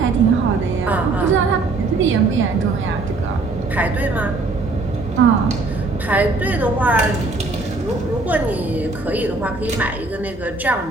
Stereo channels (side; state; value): left; quieter; 3.5 dB